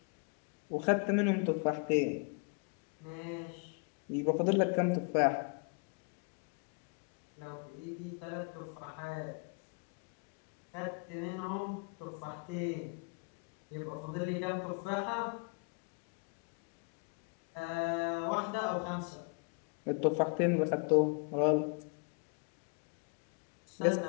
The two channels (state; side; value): quieter; right; 35.7 dB